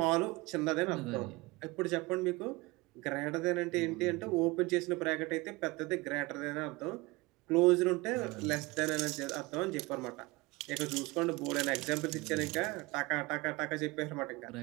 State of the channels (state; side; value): quieter; left; 23.2 dB